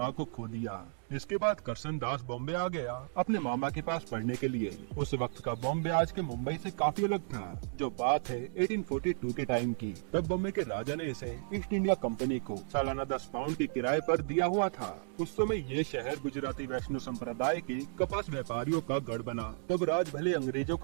को खो दिया। इसके बाद करसन दास बॉम्बे आ गया अपने मामा के पास पढ़ने के लिए। उस वक्त का बॉम्बे आज के मुंबई से काफी अलग था। जो बात है 1842 के टाइम की। तब बॉम्बे के राजा ने इसे ईस्ट इंडिया कंपनी को सालाना 10 पाउंड की किराए पर दिया हुआ था। उस समय ये शहर गुजराती वैष्णव संप्रदाय के कपास व्यापारियों का गढ़ बना। तब राज भले अंग्रेजों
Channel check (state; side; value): silent; left; digital silence